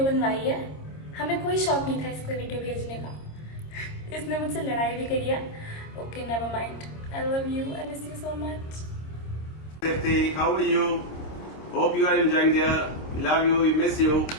बनवाई है. हमें कोई शौक नहीं था इसको वीडियो भेजने का. इसने मुझसे लड़ाई भी करी है. Okay, never mind. I love you. I miss you so much. Safety, how are you? Hope you are enjoying there. Love you, we miss you.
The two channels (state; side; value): late; right; 26 ms